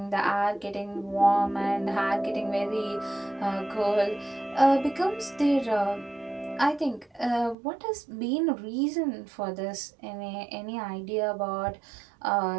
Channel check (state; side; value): drops out; left; at 7.6 s